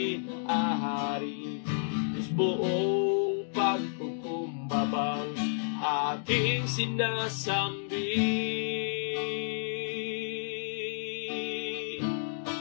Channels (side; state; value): right; silent; digital silence